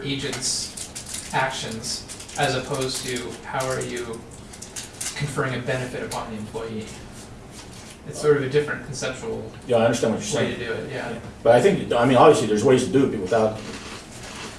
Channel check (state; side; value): identical; both; correlation 1.00